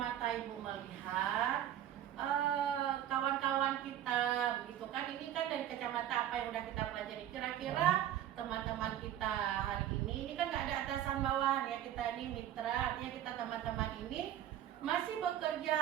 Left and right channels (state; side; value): quieter; left; 11.6 dB